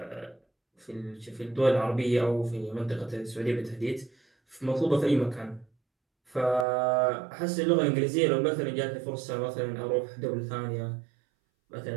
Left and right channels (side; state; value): left; drops out; at 6.7 s